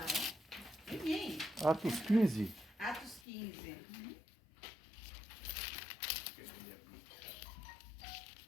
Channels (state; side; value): drops out; right; at 3.2 s